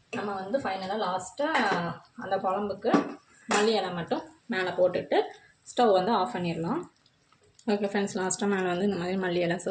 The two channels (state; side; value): identical; both; correlation 1.00